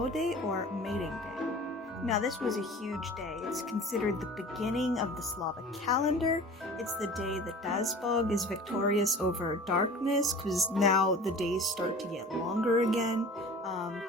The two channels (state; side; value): normal; both; correlation 0.40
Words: or Mating Day. Now, this was a huge day. It's considered the beginning of the Slavic calendar. It's the day that Dazbog is victorious over darkness, because now the days start to get longer again.